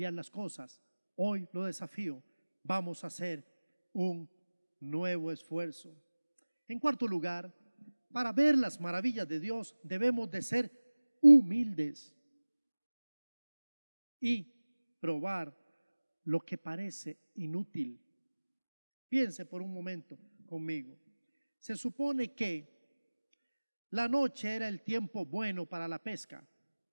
las cosas. Hoy lo desafío. Vamos a hacer un nuevo esfuerzo. En cuarto lugar, para ver las maravillas de Dios debemos de ser humildes y probar lo que parece inútil. Piense por un momento conmigo. Se supone que la noche era el tiempo bueno para la pesca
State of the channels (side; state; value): both; inverted; correlation -1.00